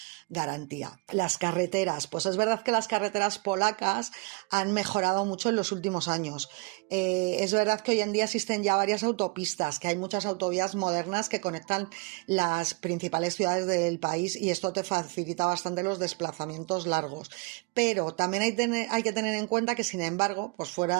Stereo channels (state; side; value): quieter; left; 29.4 dB